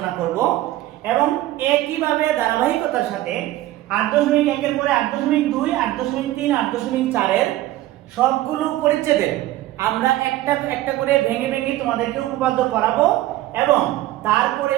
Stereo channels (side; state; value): left; quieter; 15.7 dB